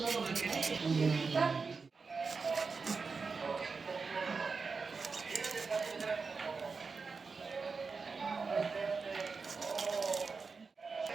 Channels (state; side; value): quieter; left; 4.7 dB